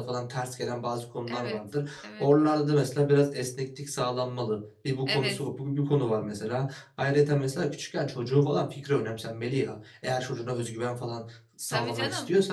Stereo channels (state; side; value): identical; both; correlation 1.00